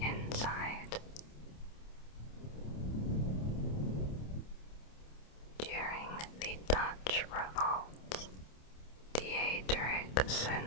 inside. During the Dutch revolt, Diederik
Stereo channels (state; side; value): late; right; 27 ms